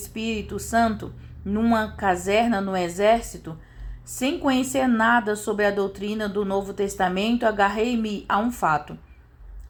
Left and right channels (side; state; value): both; identical; correlation 1.00